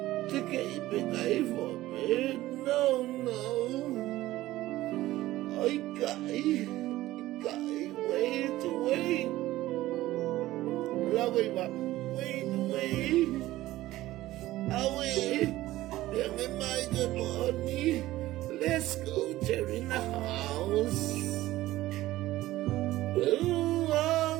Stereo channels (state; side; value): quieter; left; 16.2 dB